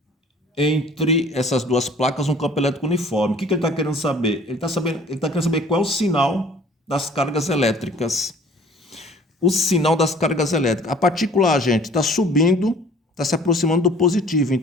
essas duas placas um campo elétrico uniforme. O que ele está querendo saber? Ele está querendo saber qual é o sinal das cargas elétricas. O sinal das cargas elétricas. A partícula A, gente, está subindo, está se aproximando do positivo.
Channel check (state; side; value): normal; both; correlation 0.52